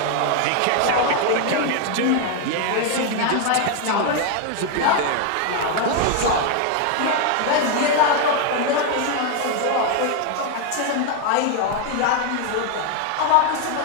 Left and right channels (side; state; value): both; different; correlation 0.01